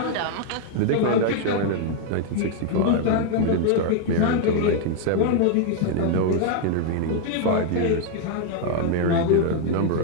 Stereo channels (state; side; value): different; both; correlation 0.00